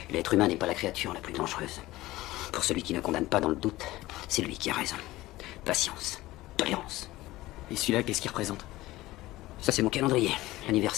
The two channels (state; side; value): quieter; right; 17.8 dB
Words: L'être humain n'est pas la créature la plus dangereuse. Pour celui qui ne condamne pas dans le doute, c'est lui qui a raison. Patience, tolérance. Et celui-là, qu'est-ce qu'il représente? Ça, c'est mon calendrier,